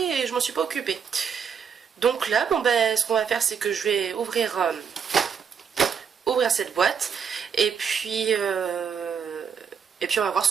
je m'en suis pas occupée. Donc là, ce qu'on va faire, c'est que je vais ouvrir cette boîte et puis on va voir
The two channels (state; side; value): quieter; left; 6.9 dB